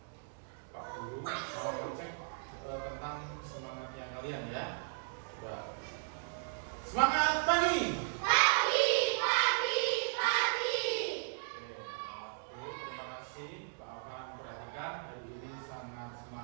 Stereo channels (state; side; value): silent; left; digital silence